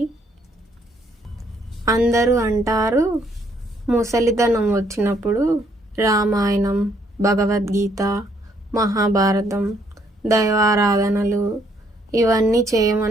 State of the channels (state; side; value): normal; both; correlation 0.69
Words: అందరూ అంటారు ముసలితనం వచ్చినప్పుడు రామాయణం, భగవద్గీత, మహాభారతం, దైవారాధనలు ఇవన్నీ